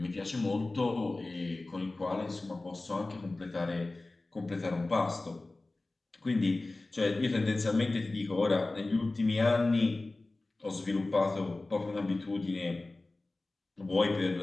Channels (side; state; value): right; quieter; 3.1 dB